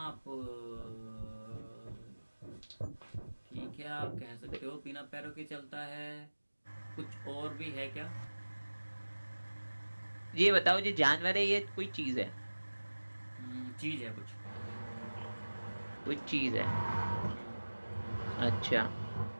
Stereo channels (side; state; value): both; inverted; correlation -1.00